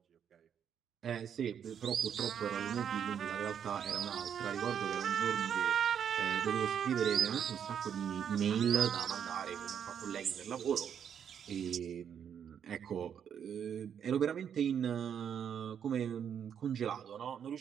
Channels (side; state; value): left; quieter; 8.3 dB